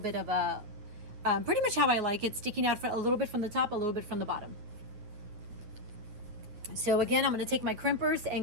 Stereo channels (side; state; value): left; late; 9.5 ms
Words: of a, pretty much how I like it, sticking out for a little bit from the top, a little bit from the bottom. So again, I'm going to take my crimpers